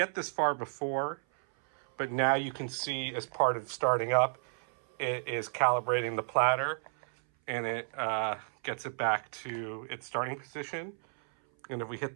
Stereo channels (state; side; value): silent; left; 56 dB below the other